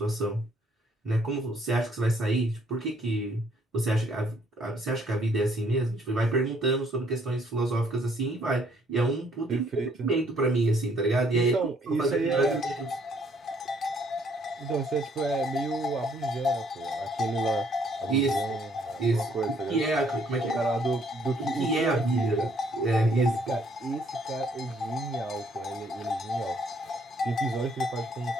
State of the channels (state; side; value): normal; both; correlation 0.65